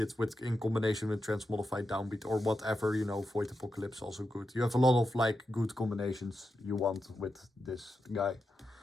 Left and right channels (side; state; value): both; normal; correlation 0.88